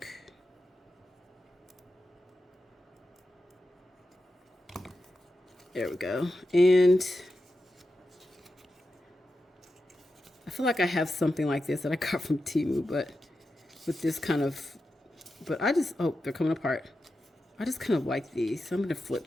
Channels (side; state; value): both; normal; correlation 0.90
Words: There we go. And I feel like I have something like this that I got from Temu, but with this kind of, but I just, oh, they're coming apart. I just kind of like these. So I'm going to flip